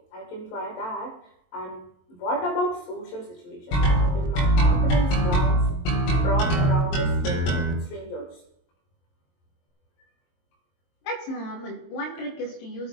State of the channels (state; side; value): late; right; 22 ms